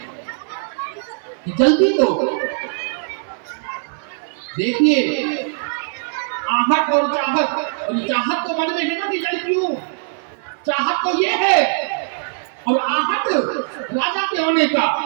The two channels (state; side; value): silent; left; 61 dB below the other